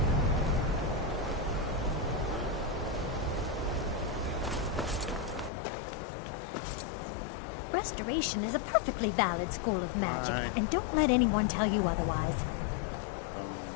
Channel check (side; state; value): right; drops out; at 5.5 s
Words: Restoration is a perfectly valid school of magic, Right. and don't let anyone tell you otherwise.